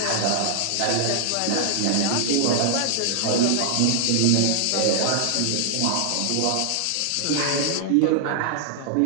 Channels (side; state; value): both; different; correlation 0.00